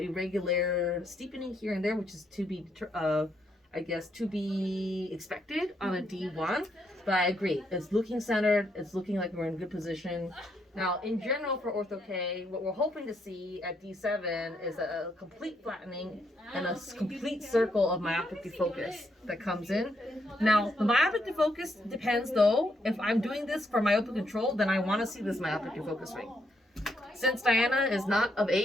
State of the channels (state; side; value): normal; both; correlation 0.76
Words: steepening here and there, which is to be expected on a D1. But I agree. It's looking centered. It's looking like we're in good position. Now, in general for Ortho-K, what we're hoping to see at D7 is a complete flattening and a complete circle of myopic defocus that comes in. Now, the myopic defocus depends, though. If I'm doing this for myopic control, then I want to see this myopic defocus ring. Since Diana is not of